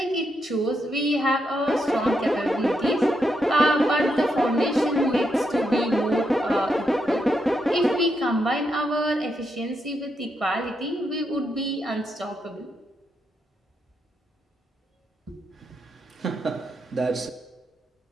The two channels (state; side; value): normal; both; correlation 0.81